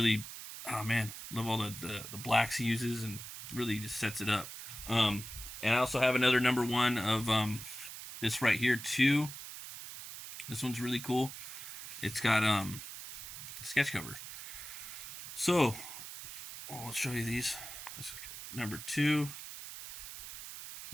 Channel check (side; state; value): right; noise; hiss, 10 dB below the sound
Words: oh man, love all the blacks he uses, and really just sets it up. And I also have another #1 of this right here too. This one's really cool. It's got sketch cover. So, I'll show you these. This is #2,